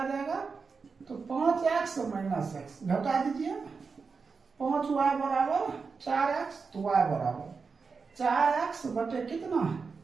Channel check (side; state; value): left; quieter; 5.0 dB